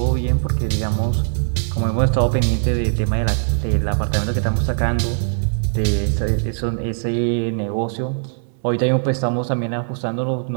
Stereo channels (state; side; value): silent; left; 65 dB below the other